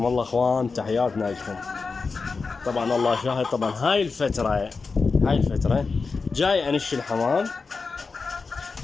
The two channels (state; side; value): quieter; right; 4.5 dB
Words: الله اخوان، تحياتنا لكم. طبعا الله شاهد، طبعا هاي الفترة جاي انش الحمام،